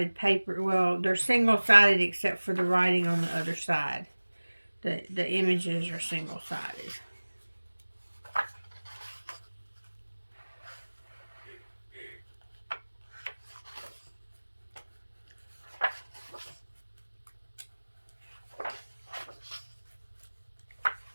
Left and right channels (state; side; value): inverted; both; correlation -1.00